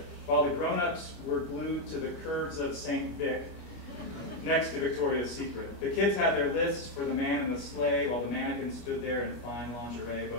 while the grown-ups were glued to the curves of St. Vic next to Victoria's Secret. The kids had their lists for the man in the sleigh, while the mannequin stood there in fine lingerie,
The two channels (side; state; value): right; late; 25 ms